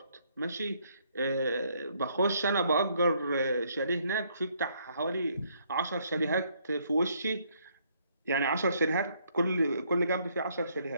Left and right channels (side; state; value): both; inverted; correlation -0.69